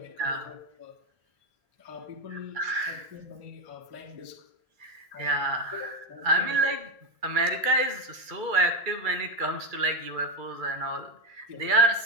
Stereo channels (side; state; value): left; late; 2.3 ms